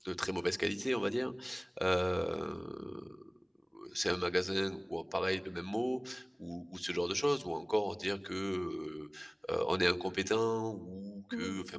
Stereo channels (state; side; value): identical; both; correlation 1.00